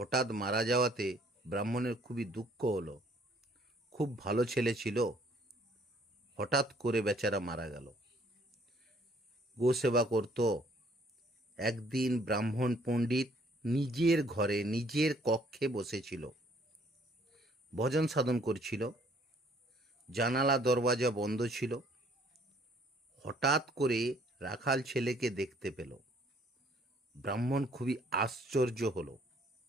মারা যাওয়াতে ব্রাহ্মণের খুবই দুঃখ হলো। খুব ভালো ছেলে ছিল, হঠাৎ করে বেচারা মারা গেল। গো সেবা করত। একদিন ব্রাহ্মণ পণ্ডিত নিজের ঘরে নিজের কক্ষে বসেছিল, ভজন সাধন করছিল। জানালা দরওয়াজা বন্ধ ছিল। হঠাৎ করে রাখাল ছেলেকে দেখতে পেল। ব্রাহ্মণ খুবই আশ্চর্য হলো।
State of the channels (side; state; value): both; normal; correlation 0.61